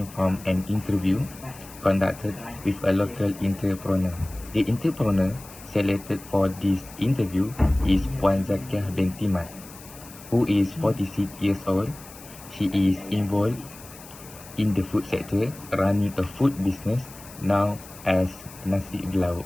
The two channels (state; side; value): noise; left; hiss, 18 dB below the sound